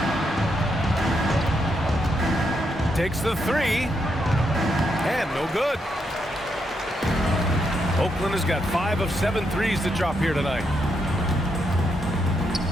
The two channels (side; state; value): both; normal; correlation 0.80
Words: Takes the 3. And no good. Oakland has got 5 of 7 threes to drop here tonight.